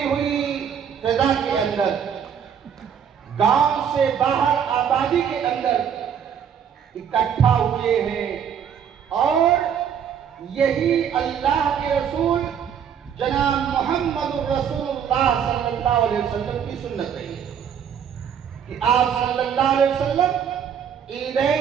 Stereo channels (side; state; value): left; quieter; 8.1 dB